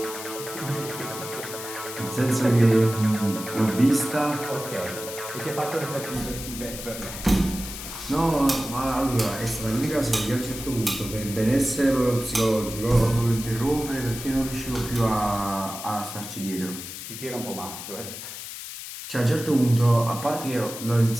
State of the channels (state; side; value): noise; left; hiss, 10 dB below the sound